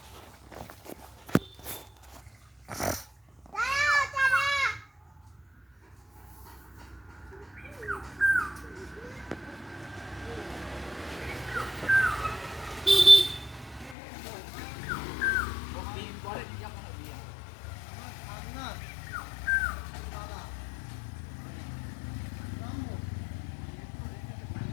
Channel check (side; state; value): right; drops out; at 14.0 s